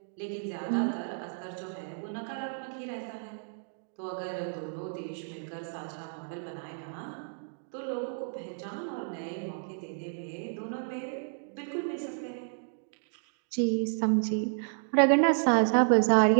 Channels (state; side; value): silent; left; digital silence